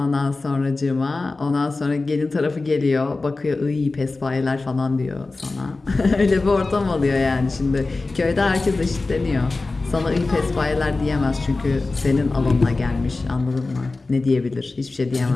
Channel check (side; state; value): right; quieter; 3.5 dB